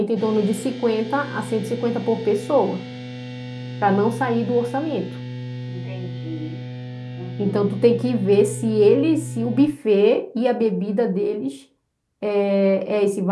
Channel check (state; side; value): identical; both; correlation 1.00